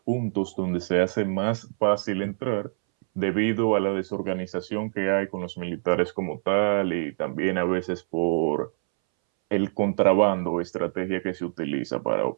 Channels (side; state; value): left; silent; 61 dB below the other